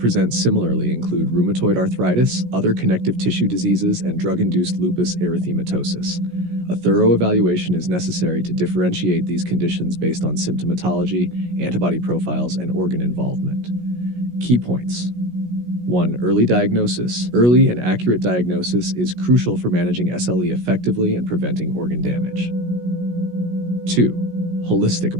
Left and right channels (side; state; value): left; late; 17 ms